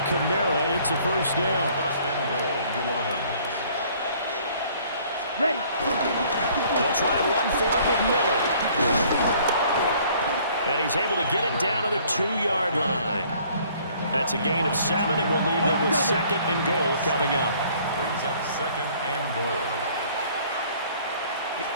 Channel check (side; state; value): both; inverted; correlation -0.58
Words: Kamara. It's a first down. First and goal, New Orleans. Ready. They'll try and run for it with Miller. And he's able to get it down to the 2-yard line. That's a gain of 7, and we'll leave them with 2nd and goal coming up. Brings up 2nd and goal.